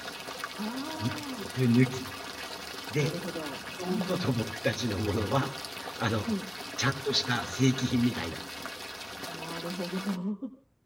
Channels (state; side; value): identical; both; correlation 1.00